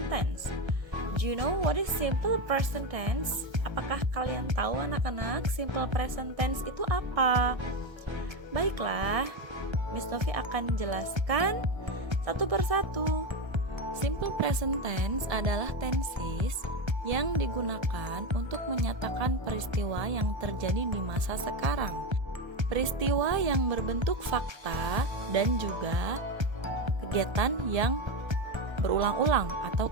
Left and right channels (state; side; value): late; left; 1.3 ms